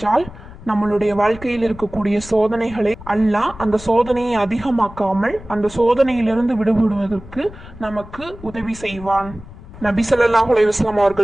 நம்மளுடைய வாழ்க்கையில் இருக்கக்கூடிய சோதனைகளை அல்லாஹ் அந்த சோதனையை அதிகமாக்காமல் அந்த சோதனையிலிருந்து விடுபடுவதற்கு நமக்கு உதவி செய்வான். நபி ஸல்லல்லாஹு அலைஹி வஸல்லம்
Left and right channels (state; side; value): noise; left; rumble, 17 dB below the sound